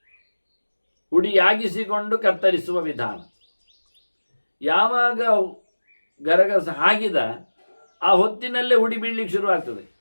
ಹುಡಿಯಾಗಿಸಿಕೊಂಡು ಕತ್ತರಿಸುವ ವಿಧಾನ. ಯಾವಾಗ ಗರಗಸ ಹಾಕಿದ ಆ ಹೊತ್ತಿನಲ್ಲೇ ಹುಡಿ ಬೀಳಲಿಕ್ಕೆ ಶುರುವಾಗ್ತದೆ.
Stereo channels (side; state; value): both; inverted; correlation -1.00